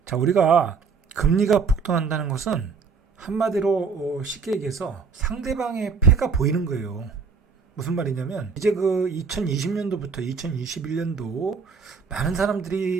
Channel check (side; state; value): left; quieter; 5.3 dB